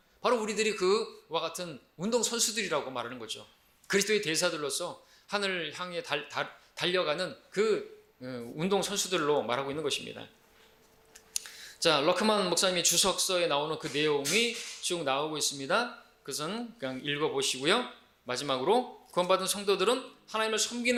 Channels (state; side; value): identical; both; correlation 1.00